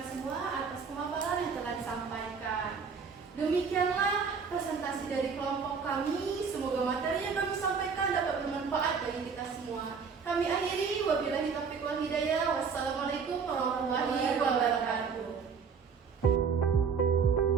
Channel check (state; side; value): quieter; left; 5.8 dB